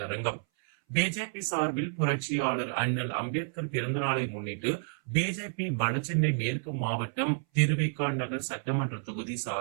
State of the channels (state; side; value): silent; left; 58 dB below the other